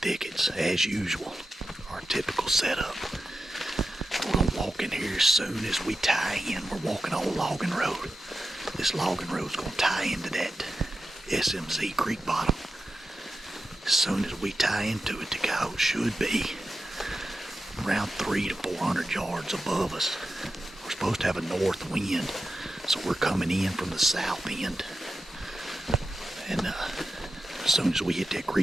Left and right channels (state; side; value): normal; both; correlation 0.91